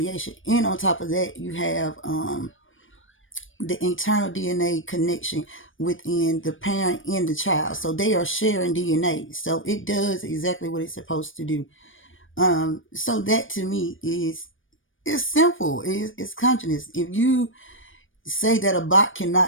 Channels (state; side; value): late; right; 0.57 ms